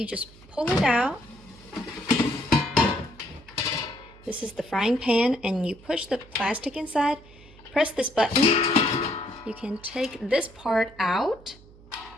just pull it out. This is the frying pan, and you push the plastic inside. Press this button. You can take this part out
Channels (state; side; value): noise; right; hum, 23 dB below the sound